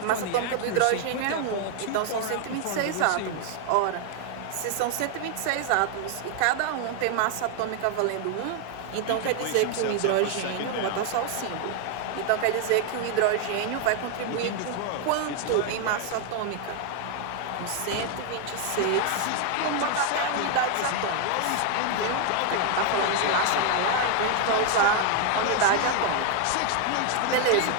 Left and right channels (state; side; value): different; both; correlation 0.00